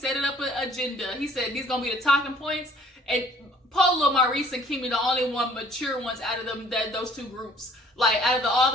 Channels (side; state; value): both; normal; correlation 0.57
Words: it up an agenda. He said these gonna be the talking points. And Polo, Maurice, and Kimmy, the only one mature ones out of them, those two groups. Like, out of all